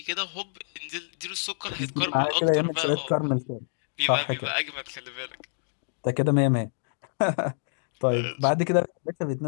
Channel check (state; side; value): silent; right; digital silence